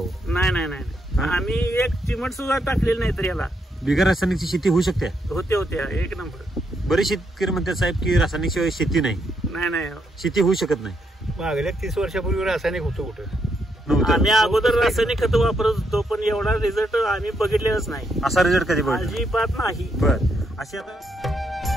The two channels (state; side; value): normal; both; correlation 0.78